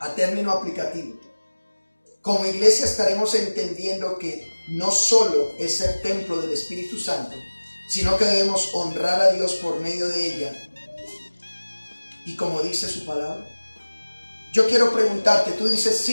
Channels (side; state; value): both; inverted; correlation -1.00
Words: término aplicativo, como iglesia estaremos entendiendo que no solo es ser templo del Espíritu Santo, sino que debemos honrar a Dios por medio de ella. Y como dice su palabra, Yo quiero preguntarte, tú dices,